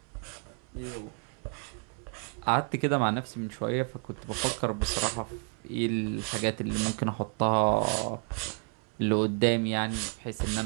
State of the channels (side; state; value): left; quieter; 37.1 dB